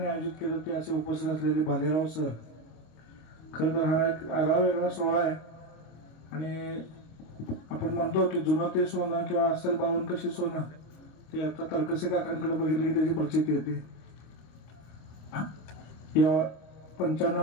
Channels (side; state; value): right; late; 25 ms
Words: आयोजित केलं ते असे उपस्थित असलेले भालेराव सर. खरं तर हा एक आगळा वेगळा सोहळा आहे आणि आपण म्हणतो की जुनं ते सोनं किंवा असेल बावन कशी सोनं ते आता तरकसे काकांकडे बघितलं की त्याची प्रचिती येते. या 95